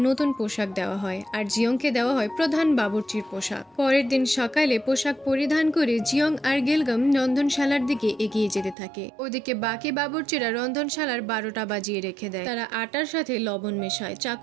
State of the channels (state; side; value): drops out; left; at 8.8 s